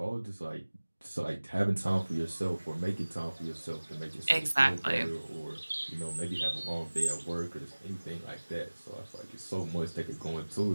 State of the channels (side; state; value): both; inverted; correlation -1.00